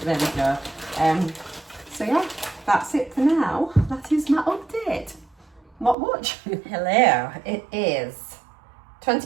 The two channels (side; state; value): left; drops out; at 6.0 s